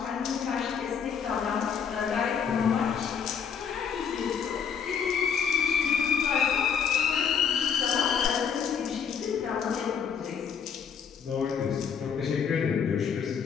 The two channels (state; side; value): quieter; right; 7.1 dB